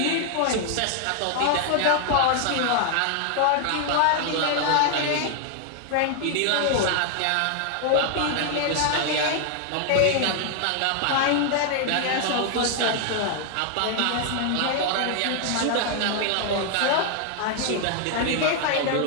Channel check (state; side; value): different; both; correlation 0.00